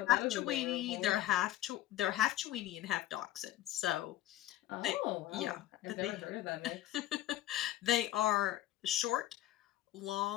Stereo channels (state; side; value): quieter; right; 14.0 dB